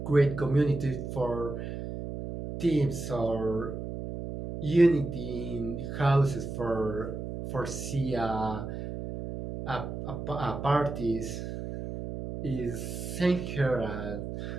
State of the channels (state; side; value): noise; right; hum, 6 dB below the sound